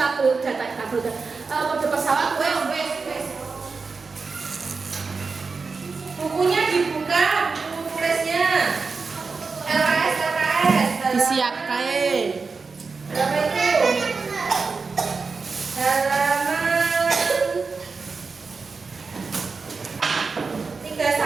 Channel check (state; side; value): quieter; left; 4.6 dB